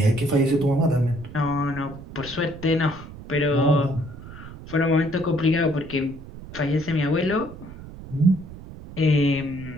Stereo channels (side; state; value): right; noise; rumble, 15 dB below the sound